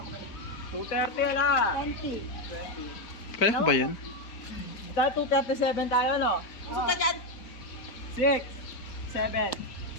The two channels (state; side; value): late; right; 4.7 ms